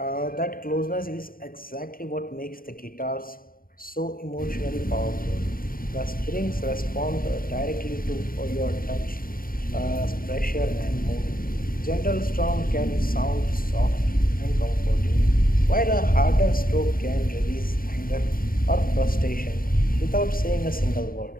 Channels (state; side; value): late; right; 0.42 ms